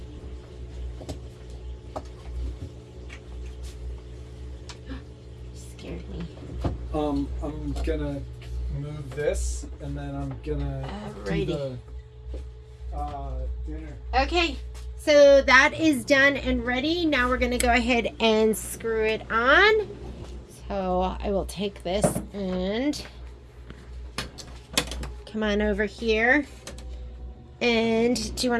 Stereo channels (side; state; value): both; identical; correlation 1.00